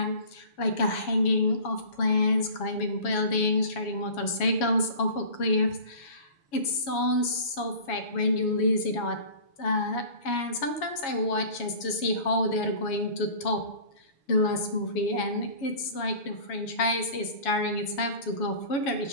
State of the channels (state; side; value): late; right; 7.2 ms